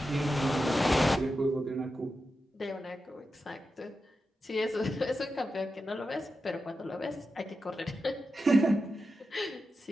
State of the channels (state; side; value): normal; both; correlation 0.90